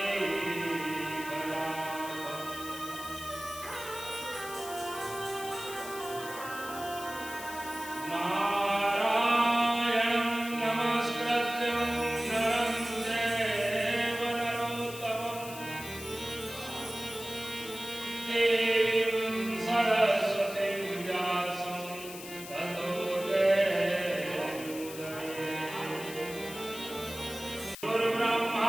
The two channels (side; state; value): left; noise; hiss, 12 dB below the sound